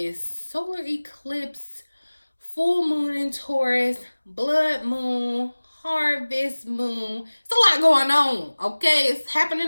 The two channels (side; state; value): both; inverted; correlation -1.00